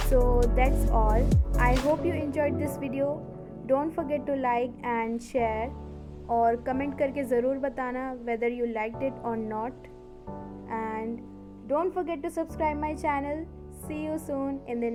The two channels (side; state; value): both; identical; correlation 1.00